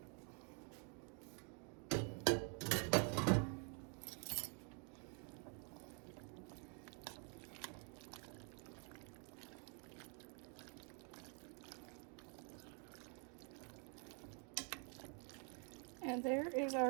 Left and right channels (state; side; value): quieter; left; 39.2 dB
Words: And there is